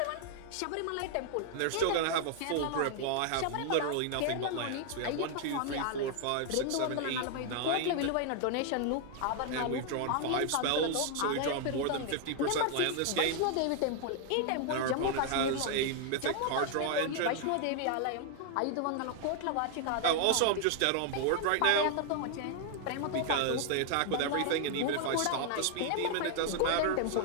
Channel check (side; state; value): both; different; correlation 0.00